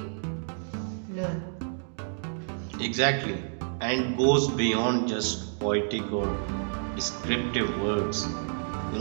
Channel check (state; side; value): silent; left; digital silence